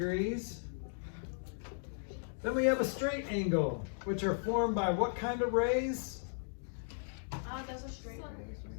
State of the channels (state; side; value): silent; right; digital silence